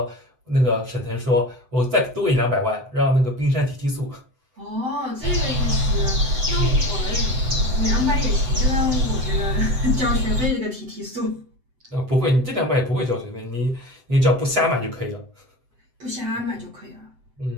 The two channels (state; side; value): late; left; 7.8 ms